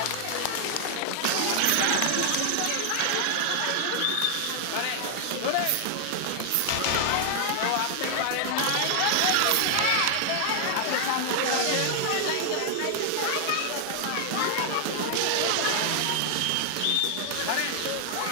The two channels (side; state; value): both; different; correlation 0.00